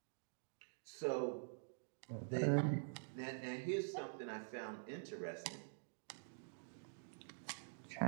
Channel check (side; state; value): left; silent; digital silence